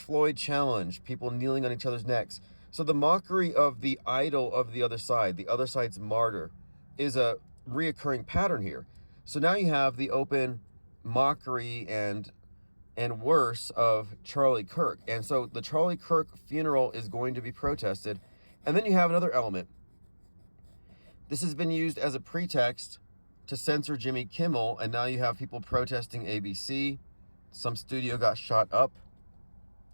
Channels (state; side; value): inverted; both; correlation -1.00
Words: challenge, people kneeling on each other's necks. So the mockery of the idol of the other side's martyr, is a reoccurring pattern here. So now you have the open mockery and worse of Charlie Kirk. And so the Charlie Kirk funeral is going to be protested. And then you have another element. This has been used as a pretext to censor Jimmy Kimmel, and now you have people protesting ABC. Some studio got shot up.